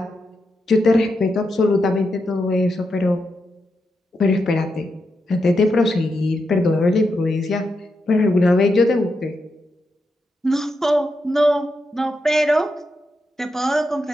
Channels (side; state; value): both; normal; correlation 0.85